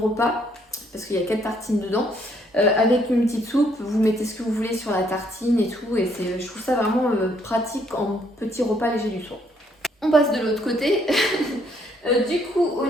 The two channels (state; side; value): normal; both; correlation 0.69